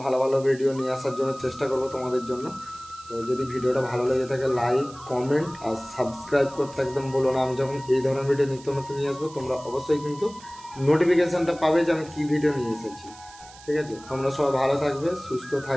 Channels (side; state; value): right; noise; hiss, 20 dB below the sound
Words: ভালো ভালো ভিডিও নিয়ে আসার জন্য চেষ্টা করব তোমাদের জন্য। তো যদি ভিডিওটা ভালো লেগে থাকে, লাইক, কমেন্ট আর সাবস্ক্রাইব করতে একদম বলো না। আমি যখন এই ধরনের ভিডিও নিত্য নতুন নিয়ে আসবো, তোমরা অবশ্যই কিন্তু নোটিফিকেশানটা পাবে যে আমি কী ভিডিও নিয়ে এসেছি, ঠিক আছে। তোমরা সবাই ভালো থাকবে, সুস্থ